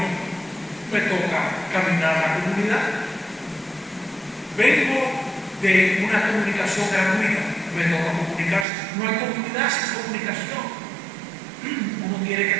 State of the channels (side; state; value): left; drops out; at 8.7 s